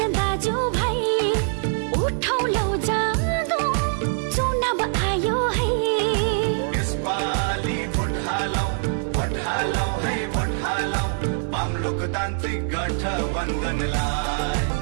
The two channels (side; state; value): left; silent; digital silence